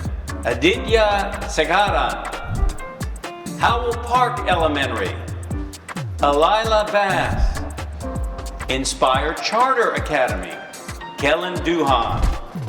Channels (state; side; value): identical; both; correlation 1.00